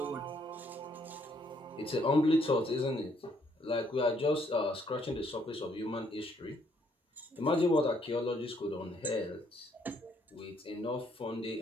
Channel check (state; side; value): normal; both; correlation 0.69